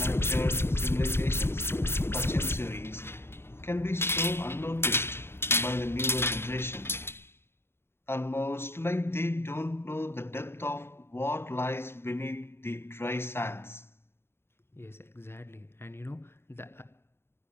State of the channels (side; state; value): right; late; 0.11 ms